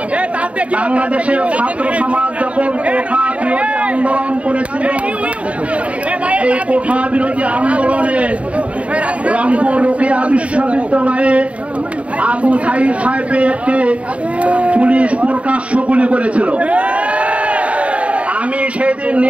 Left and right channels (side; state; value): left; late; 0.064 ms